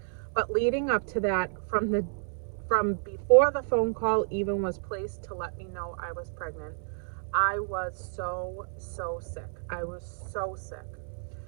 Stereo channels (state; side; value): silent; left; 57 dB below the other